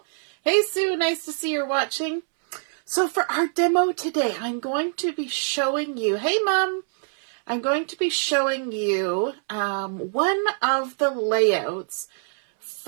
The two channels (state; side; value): silent; left; 62 dB below the other